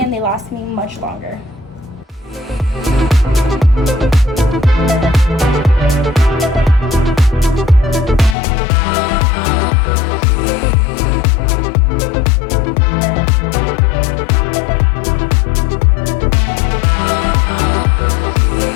they last me much longer.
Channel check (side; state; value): right; drops out; at 8.3 s